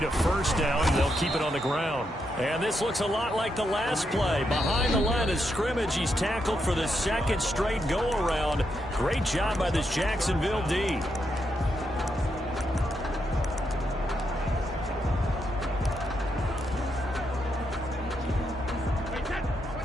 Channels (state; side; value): normal; both; correlation 0.81